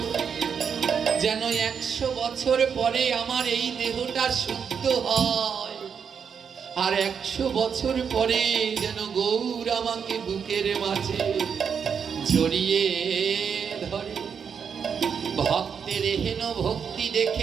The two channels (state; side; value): quieter; left; 6.9 dB